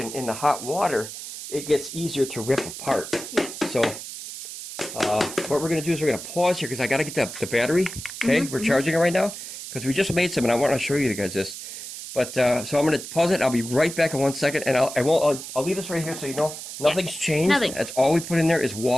the hot water, it gets easier to rip apart. Yeah. So what we're going to do is we're going to pause here because I got to get the battery. Okay, we're charging it right now because we just made some, and I want to show you guys this. But so I'm going to pause it. I'll be right back in 1 second, and I'll leave this right here so you know nothing's changed. Nothing. That's all we put in there is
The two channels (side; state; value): right; noise; hiss, 10 dB below the sound